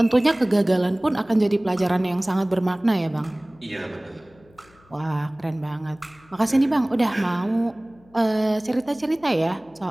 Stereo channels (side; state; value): left; noise; hum, 29 dB below the sound